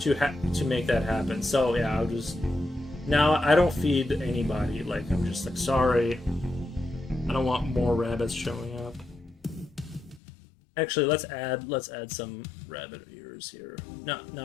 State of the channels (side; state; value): right; drops out; at 10.2 s